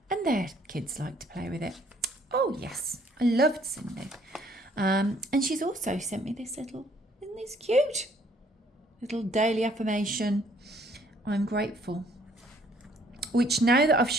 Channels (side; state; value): both; normal; correlation 0.62